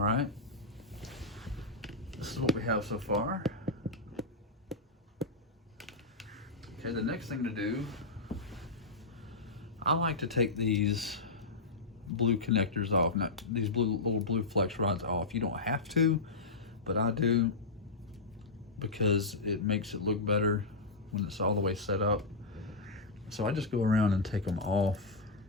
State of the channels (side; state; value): right; quieter; 3.4 dB